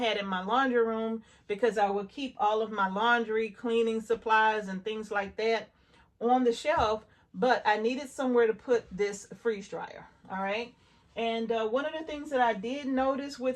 in my laundry room, because I would keep all of my laundry, cleaning supplies, and things like that on the shelf. But I needed somewhere to put this freeze dryer. All right. And one of the things that I did notice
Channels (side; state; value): both; identical; correlation 1.00